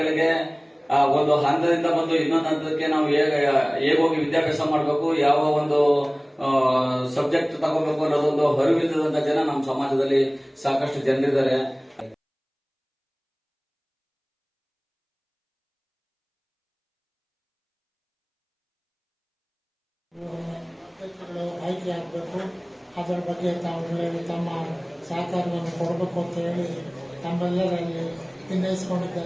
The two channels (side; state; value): both; identical; correlation 1.00